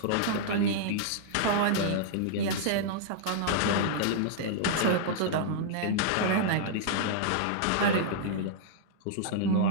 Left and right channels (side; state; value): both; different; correlation -0.01